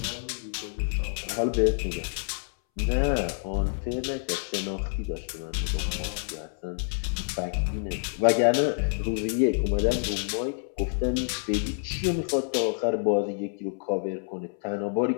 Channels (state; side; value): silent; right; 59 dB below the other